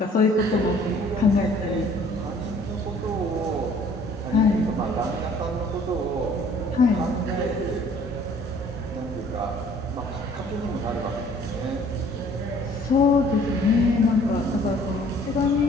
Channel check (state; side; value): normal; both; correlation 0.56